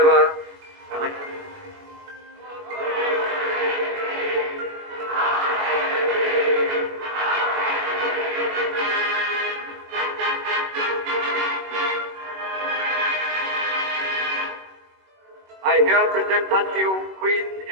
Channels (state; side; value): late; left; 21 ms